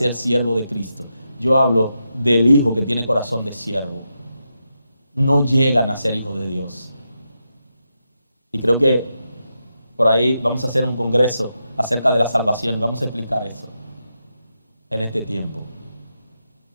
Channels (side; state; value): both; inverted; correlation -0.86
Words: siervos de Cristo. Yo hablo del hijo que tiene corazón de siervo. No llegan a ser hijos de Dios. Y creo que por ahí vamos a hacer un congreso acerca de la salvación y vamos a explicar eso en este tiempo.